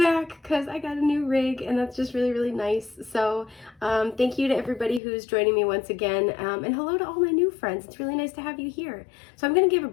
because I got a new rig, and that's just really, really nice. So thank you to everybody who's joining me once again, and hello to all my new friends. It's really nice to have you here. So I'm going to give a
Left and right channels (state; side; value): drops out; right; at 5.0 s